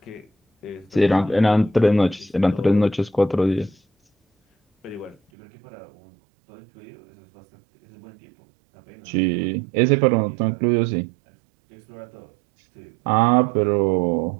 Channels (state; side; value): drops out; left; at 5.2 s